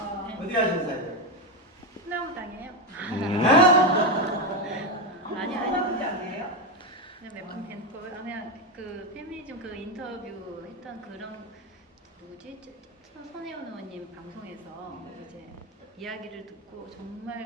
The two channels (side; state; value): both; normal; correlation 0.11